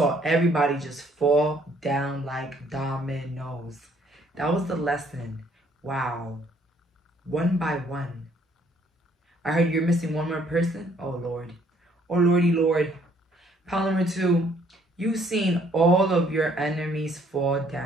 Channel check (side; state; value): both; normal; correlation 0.64